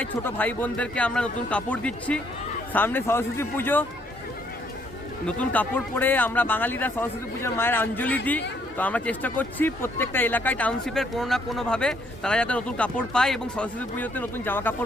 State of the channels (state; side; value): normal; both; correlation 0.69